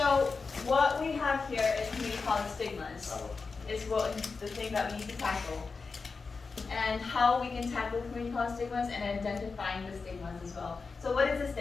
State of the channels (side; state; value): right; quieter; 4.6 dB